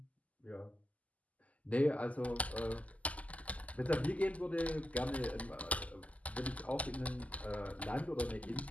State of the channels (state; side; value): late; right; 0.072 ms